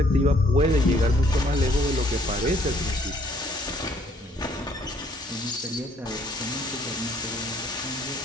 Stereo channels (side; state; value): both; normal; correlation 0.63